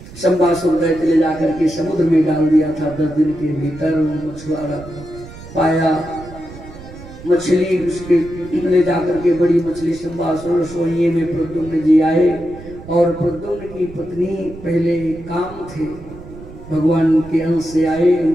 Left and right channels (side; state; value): right; noise; rumble, 16 dB below the sound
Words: संबासुर दैत्य ले जाकर के समुद्र में डाल दिया था। 10 दिन के भीतर मछुआरा पाया मछली, उसके ले जाकर के बड़ी मछली संबासुर सोइए में प्रद्युम्न जी आए। और प्रद्युम्न की पत्नी पहले काम थे, भगवान के अंश से आए।